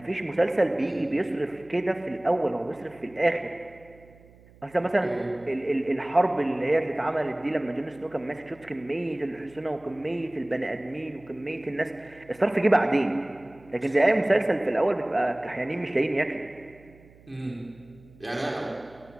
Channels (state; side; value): noise; right; hum, 25 dB below the sound